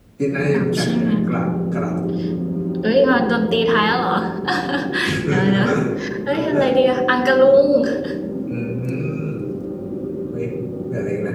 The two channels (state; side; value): identical; both; correlation 1.00